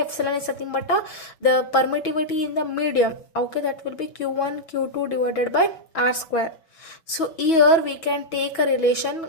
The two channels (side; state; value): right; late; 6.1 ms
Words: is nothing but the permittivity in the medium. Okay, that will be q1 q2 divided by r square. So here we can take a relation,